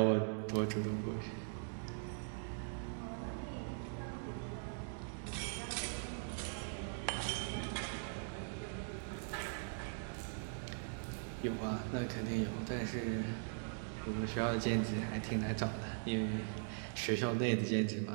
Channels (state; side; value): silent; left; digital silence